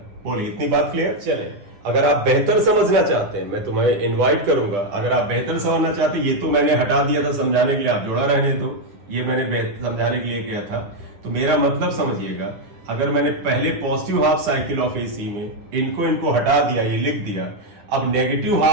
बोलिए इतनी बात क्लियर। चले अगर आप बेहतर समझना चाहते हैं, मैं तुम्हें इनवाइट करूंगा, अगर आप बेहतर समझना चाहते हैं, ये तो मैंने हटा दिया था समझाने के लिए, आप जोड़ा रहने दो, ये मैंने समझाने के लिए किया था, तो मेरा मतलब समझिएगा, अगर मैंने पहले positive half cycle of AC में इनको हटा दिया, ये लिख दिया, अब नेगेटिव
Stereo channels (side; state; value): left; late; 10 ms